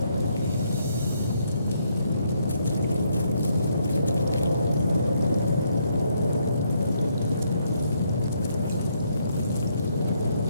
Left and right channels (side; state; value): both; inverted; correlation -0.73